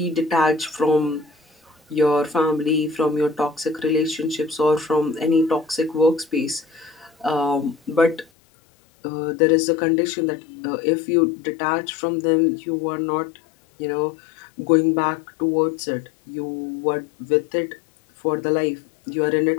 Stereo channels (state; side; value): drops out; right; at 8.2 s